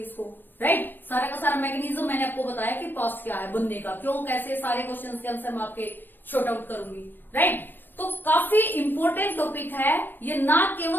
राइट। सारा का सारा मैकेनिज्म मैंने आपको बताया कि पास्ट क्या है, बनने का क्यों, कैसे, सारे क्वेश्चंस के आंसर मैं आपके शॉर्ट आउट करूंगी, राइट। तो काफी इंपॉर्टेंट टॉपिक है ये, ना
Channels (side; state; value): right; late; 0.094 ms